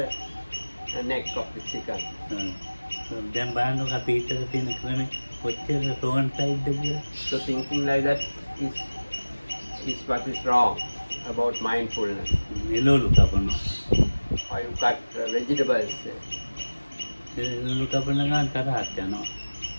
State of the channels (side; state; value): both; inverted; correlation -1.00